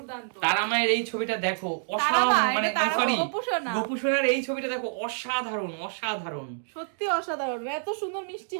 তারা মায়ের এই ছবিটা দেখো, তারা অসাধারণ, মা, মানে এটা তারা মা, সরি গোপুসোনা। গোপুসোনার এই ছবিটা দেখো, অসাধারণ অসাধারণ সত্যি অসাধারণ, এত সুন্দর মিষ্টি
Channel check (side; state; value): left; silent; digital silence